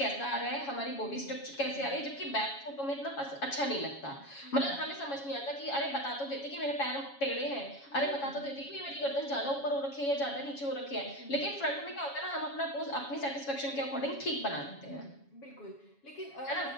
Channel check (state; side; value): late; right; 7.2 ms